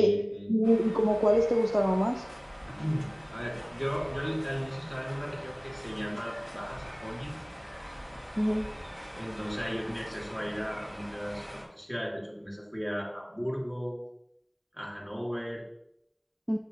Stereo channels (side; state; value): both; identical; correlation 1.00